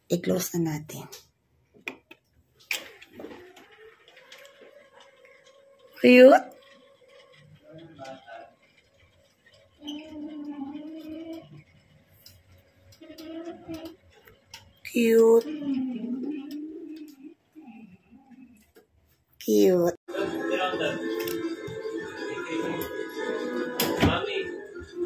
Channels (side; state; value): both; identical; correlation 1.00